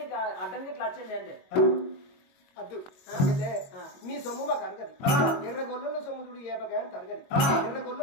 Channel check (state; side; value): late; right; 22 ms